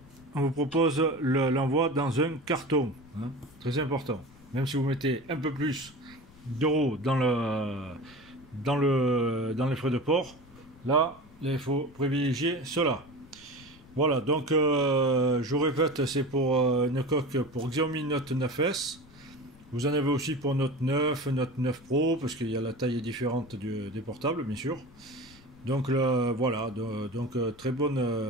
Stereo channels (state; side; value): noise; left; rumble, 24 dB below the sound